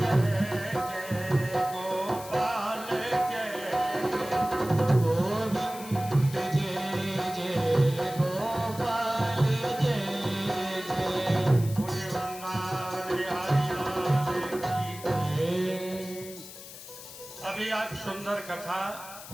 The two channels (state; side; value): noise; left; hiss, 14 dB below the sound